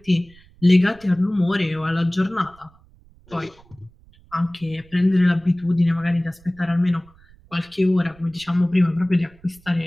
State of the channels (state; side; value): noise; right; rumble, 27 dB below the sound